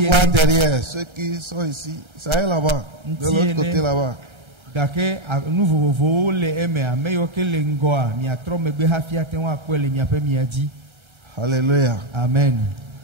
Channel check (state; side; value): late; left; 1.3 ms